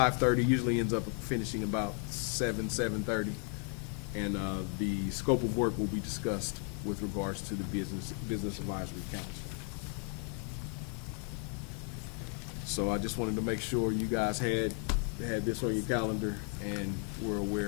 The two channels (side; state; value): right; quieter; 35.9 dB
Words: usually ends up finishing about 7:30, and the scope of work will be discussed with regards to the Business Advisory Council. So I just wanted to make sure you guys had this on your calendar and were